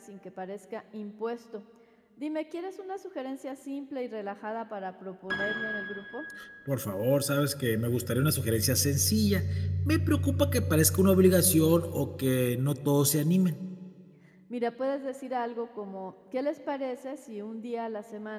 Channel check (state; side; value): identical; both; correlation 1.00